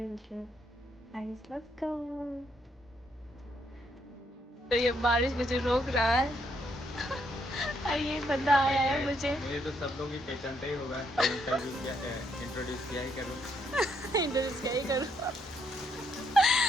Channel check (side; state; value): both; normal; correlation 0.74